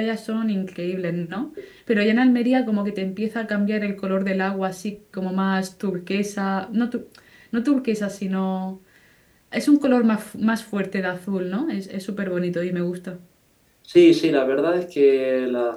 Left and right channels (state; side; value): identical; both; correlation 1.00